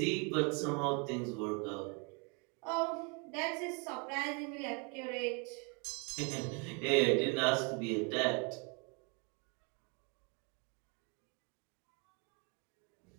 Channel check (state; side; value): quieter; left; 33.7 dB